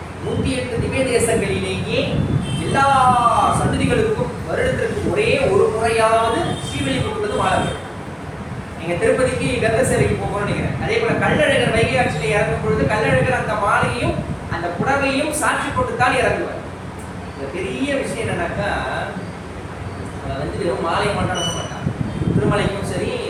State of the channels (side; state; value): both; identical; correlation 1.00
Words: 108 திவ்ய தேசங்களிலேயே எல்லா சன்னதிகளுக்கும் வருடத்திற்கு ஒரே ஒரு முறையாவது ஸ்ரீவில்லிபுத்தூர்ல மாலை வரும். நீங்க திருப்பதிக்கு கந்தசேரிக்கு போகணும்னு நினைக்கிறேன். அதே போல கள்ளழகர் வைகை ஆற்றிலே இறங்கும் பொழுது கள்ளழகர் அந்த மாலையும் அந்த புடவையும் சாட்சி கொண்டுத்தான் இறங்குவார். இந்த பெரிய விஷயம் என்னன்னாக்கா, வந்து வெறும் மாலை மட்டும் அனுப்ப மாட்டாங்க. திருமலைக்கும் சரி